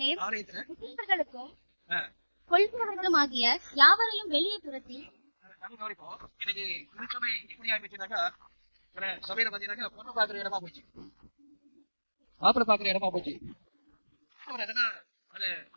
சீஷர்களுக்கும் கொள்கிறவர்களும் ஆகிய யாவரையும் வெளியே துரத்தி நம்ம கவனிப்போம். இன்னைக்கு திருச்சபை எப்படி ஆயிடுச்சுனாக்கா, சபையில பாத்தீங்கன்னாக்கா பொண்ணு பாக்குற இடமா போச்சு, மாப்பிள்ளை பாக்குற இடமா போச்சு. அவர் என்னன்னா அதை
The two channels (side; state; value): both; inverted; correlation -1.00